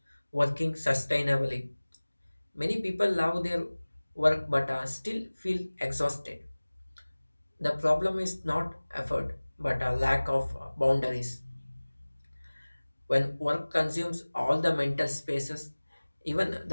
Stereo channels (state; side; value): inverted; both; correlation -1.00